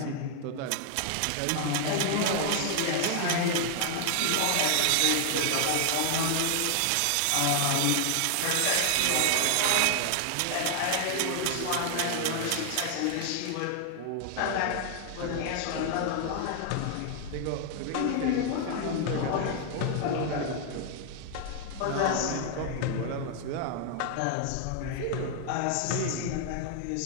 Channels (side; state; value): both; different; correlation 0.00